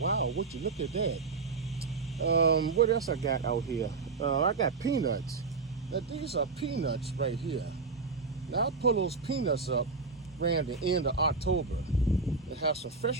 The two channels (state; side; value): quieter; left; 4.4 dB